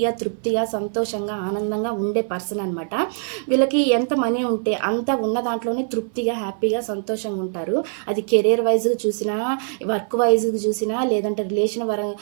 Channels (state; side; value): silent; left; 57 dB below the other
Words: తృప్తిగా, సంతోషంగా, ఆనందంగా ఉండే పర్సన్ అనమాట. వీళ్ళకి ఎంత మనీ ఉంటే అంత ఉన్న దాంట్లోనే తృప్తిగా, హ్యాపీగా, సంతోషంగా ఉంటారు. అది కెరీర్ వైజ్గా చూసినా, వర్క్ వైజ్గా చూసినా, లేదంటే